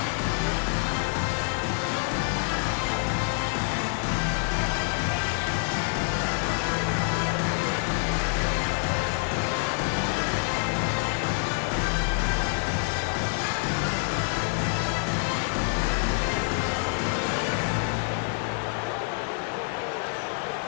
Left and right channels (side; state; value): right; silent; 58 dB below the other